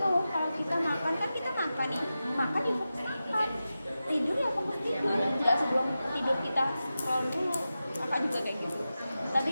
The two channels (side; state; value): both; inverted; correlation -0.93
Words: Kalau kita makan kan kita makan nih, makan ya fokus makan, tidur ya fokus tidur, nggak sebelum tidur kita scroll dulu. Kakak juga kayak gitu, tapi